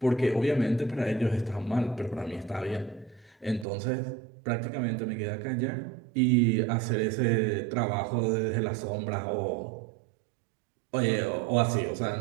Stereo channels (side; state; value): left; drops out; at 3.7 s